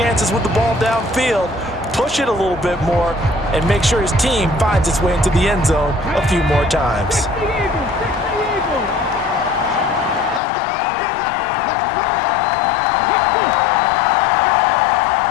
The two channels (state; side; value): drops out; right; at 10.4 s